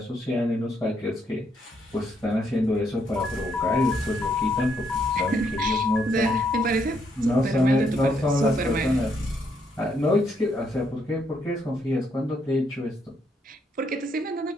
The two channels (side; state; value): both; normal; correlation 0.74